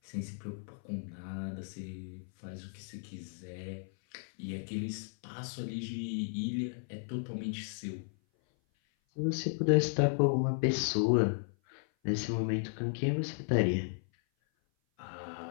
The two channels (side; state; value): right; silent; 55 dB below the other